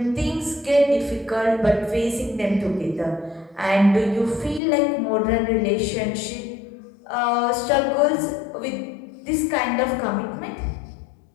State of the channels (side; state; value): right; drops out; at 4.6 s